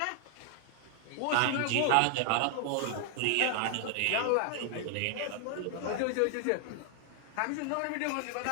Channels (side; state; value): both; different; correlation 0.00